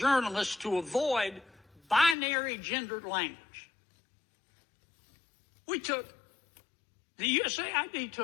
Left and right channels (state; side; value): drops out; right; at 2.1 s